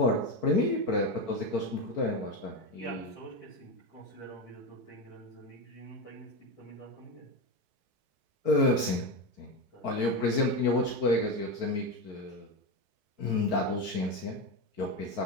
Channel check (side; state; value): left; late; 4.6 ms